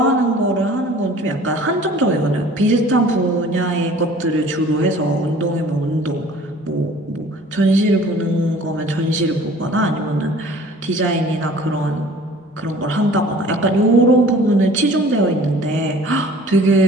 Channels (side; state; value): both; normal; correlation 0.49